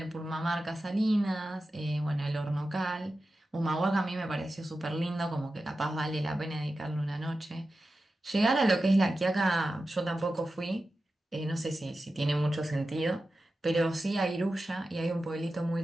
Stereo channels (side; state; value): both; normal; correlation 0.93